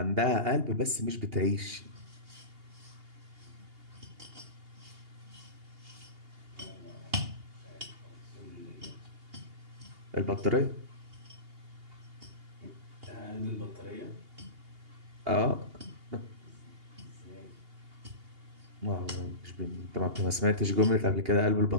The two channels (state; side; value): late; left; 2.8 ms